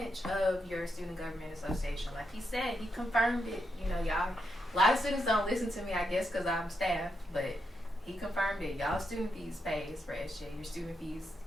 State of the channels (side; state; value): both; normal; correlation 0.83